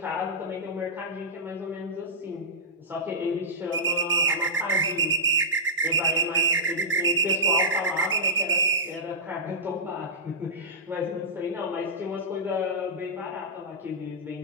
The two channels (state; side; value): normal; both; correlation -0.15